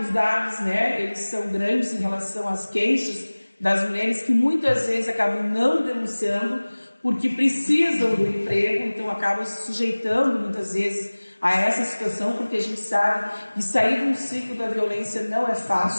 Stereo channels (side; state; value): both; inverted; correlation -1.00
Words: dados, né, eles são grandes em relação às queixas das mulheres que muitas vezes acabam não denunciando porque precisam do emprego, então acabam se sujeitando muitas vezes a essa situação, porque a gente sabe que sair de um ciclo da violência não é